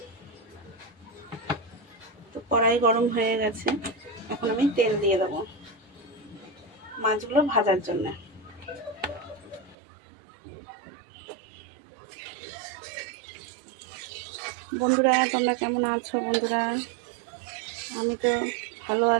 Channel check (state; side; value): drops out; left; at 9.8 s